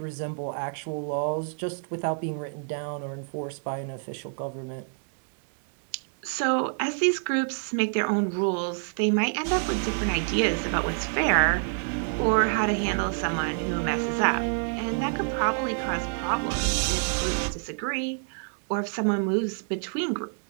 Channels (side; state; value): left; silent; 60 dB below the other